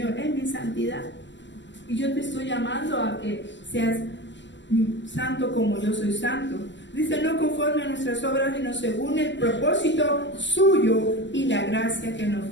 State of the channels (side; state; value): right; late; 0.53 ms